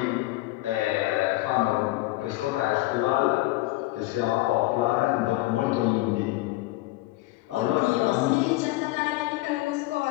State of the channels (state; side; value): quieter; right; 18.7 dB